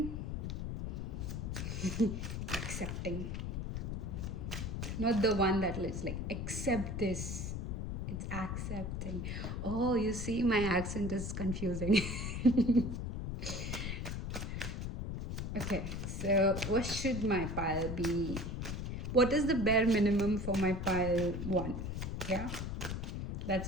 Accepting. Not the one that is like, accept this. It's accepting. Oh, you see, my accent is confusing. Okay, so what should my pile be? What is the bare minimum for my pile one? Yeah, that's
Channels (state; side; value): noise; left; rumble, 4 dB below the sound